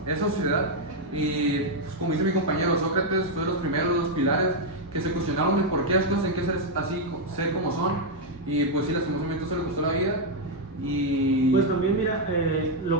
esa sociedad. Y pues, como dice mi compañero, Sócrates fue de los primeros, de los pilares que se cuestionaron el por qué las cosas tienen que ser así, ser como son. Y pues sí, lastimosamente eso le costó la vida. Y Pues también mira,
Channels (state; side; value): normal; both; correlation 0.00